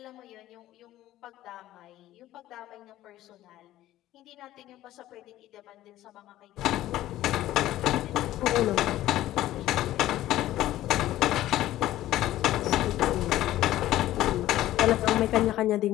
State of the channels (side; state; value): right; quieter; 14.5 dB